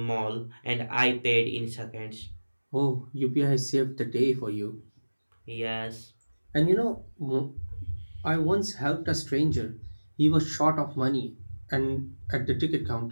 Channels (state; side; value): inverted; both; correlation -1.00